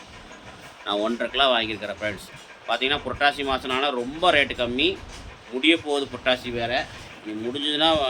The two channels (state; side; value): identical; both; correlation 1.00